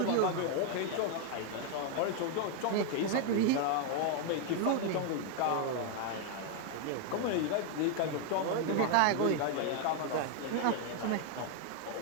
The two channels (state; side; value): different; both; correlation 0.00